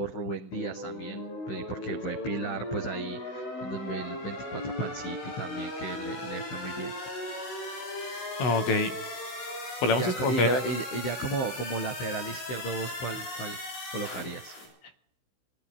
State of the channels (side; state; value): right; late; 16 ms